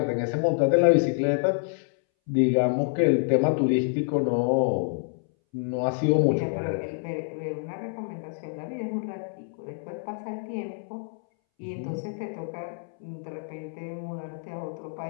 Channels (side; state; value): right; silent; 60 dB below the other